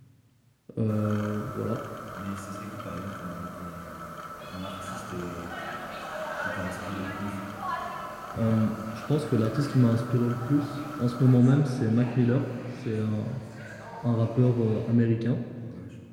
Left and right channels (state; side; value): identical; both; correlation 1.00